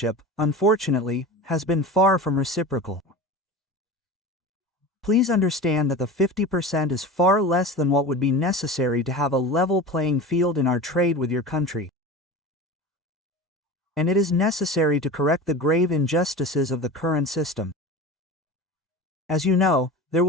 unfortunately, has been far from reciprocal. Please understand that the 50% is far less than what would be necessary to have a level playing field in our trade with your country. And it is necessary to correct the grave injustices of the current system. As you know, there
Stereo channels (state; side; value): normal; both; correlation 0.32